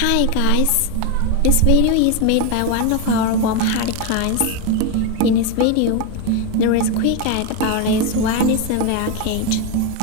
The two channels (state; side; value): different; both; correlation 0.02